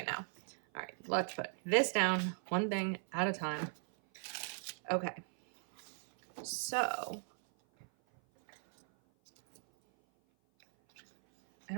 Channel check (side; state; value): left; silent; 53 dB below the other